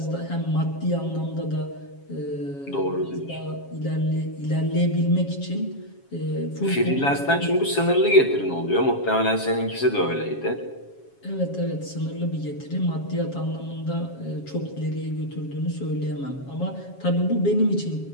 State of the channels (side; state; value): right; late; 7.3 ms